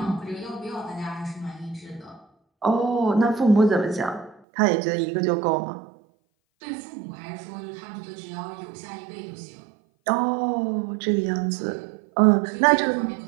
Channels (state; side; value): drops out; left; at 4.4 s